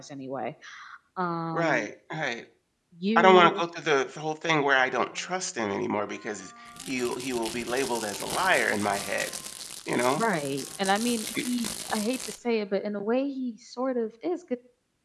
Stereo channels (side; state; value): both; identical; correlation 1.00